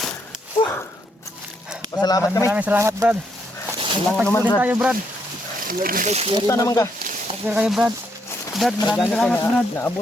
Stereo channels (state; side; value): normal; both; correlation 0.75